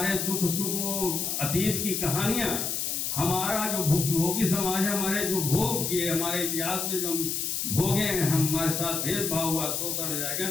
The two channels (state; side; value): noise; left; hiss, 1 dB below the sound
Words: दुख सुख, अतीत की कहानियां, हमारा जो भोगी समाज है, हमारे जो भोग किए, हमारे इतिहास में जो भोगे हैं, हमारे साथ भेदभाव हुआ, शोषण हो जाएगा,